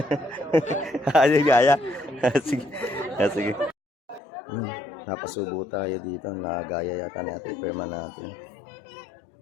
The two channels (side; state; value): right; drops out; at 4.2 s